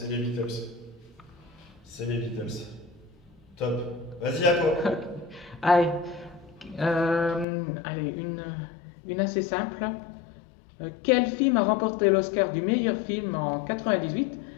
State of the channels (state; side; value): drops out; right; at 7.5 s